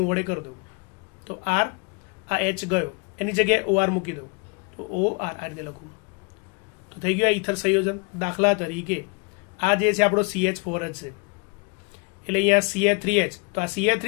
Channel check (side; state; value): right; quieter; 31.3 dB